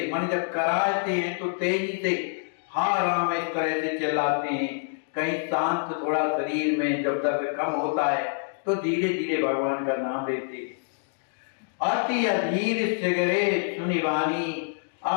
मन जब कराते हैं तो तेजी से हा राम इस तरह से चिल्लाते हैं। कहीं शांत थोड़ा शरीर में जब दर्द कम होता है तो धीरे धीरे भगवान का नाम लेते हैं। अति अधीर सिगरे सुनि वाणी,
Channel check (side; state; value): right; silent; digital silence